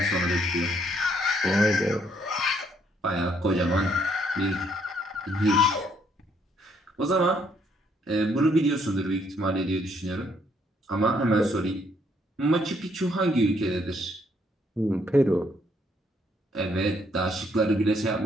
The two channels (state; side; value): normal; both; correlation 0.70